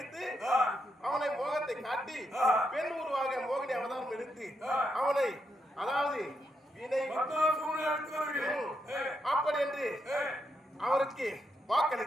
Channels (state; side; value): normal; both; correlation 0.81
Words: அவனை மோகத்தை காட்டி பெண் உருவாக மோகினி அவதாரம் எடுத்து அவனை அதாவது அப்படி என்று அவருக்கு